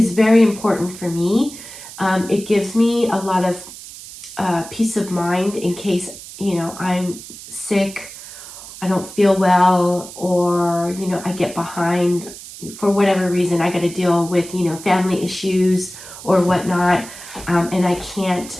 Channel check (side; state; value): right; noise; hiss, 14 dB below the sound